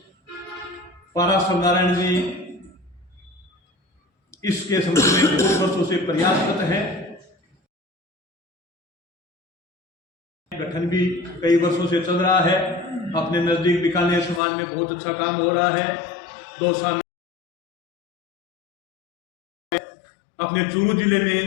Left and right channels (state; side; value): drops out; right; at 14.4 s